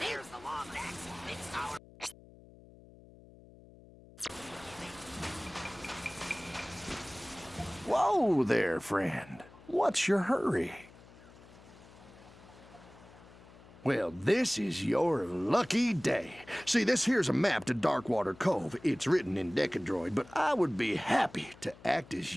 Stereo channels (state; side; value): noise; left; hum, 22 dB below the sound